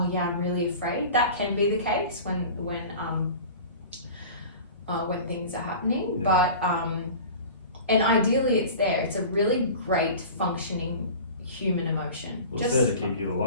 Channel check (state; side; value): inverted; both; correlation -0.38